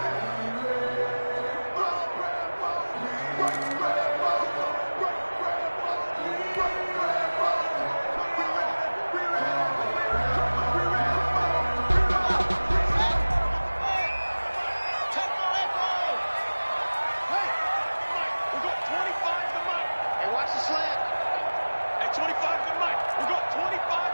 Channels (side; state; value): both; inverted; correlation -1.00